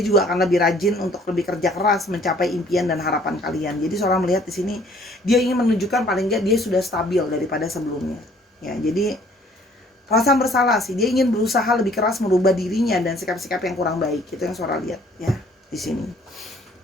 akan lebih rajin untuk lebih kerja keras mencapai impian dan harapan kalian. Jadi seorang melihat di sini dia ingin menunjukkan paling nggak dia sudah stabil daripada sebelumnya ya. Jadi perasaan bersalah sih, dia ingin berusaha lebih keras merubah dirinya dan sikap-sikap yang kurang baik. Itu yang Sora lihat ya di sini.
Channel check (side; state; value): both; normal; correlation 0.58